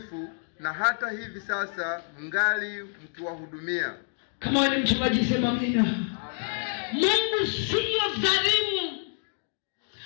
na hata hivi sasa mngali mkiwahudumia. Kama wewe ni mchungaji sema amina. Mungu sio dhalimu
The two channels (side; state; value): right; silent; digital silence